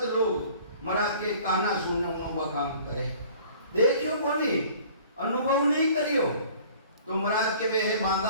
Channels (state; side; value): inverted; both; correlation -0.50